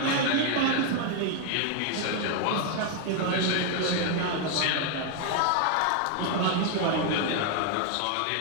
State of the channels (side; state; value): both; different; correlation 0.00